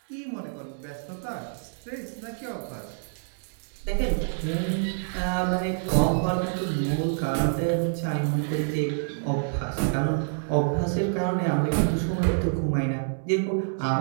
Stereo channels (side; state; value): left; silent; 60 dB below the other